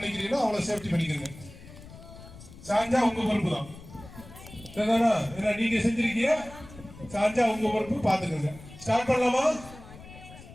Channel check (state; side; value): noise; left; rumble, 17 dB below the sound